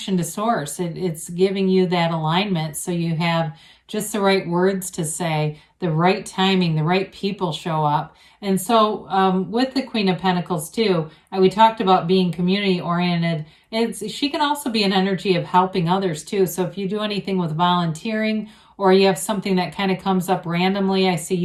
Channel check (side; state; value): both; identical; correlation 1.00